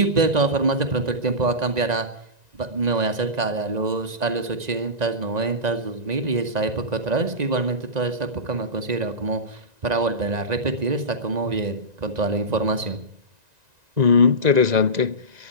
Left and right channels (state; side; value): late; left; 1.9 ms